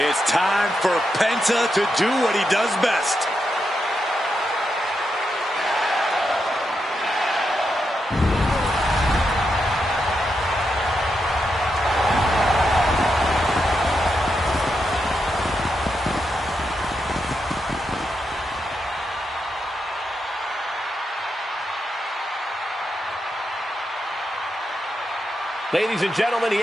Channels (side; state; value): both; normal; correlation 0.84